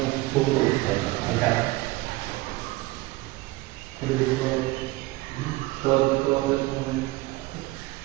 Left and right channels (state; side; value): quieter; left; 20.1 dB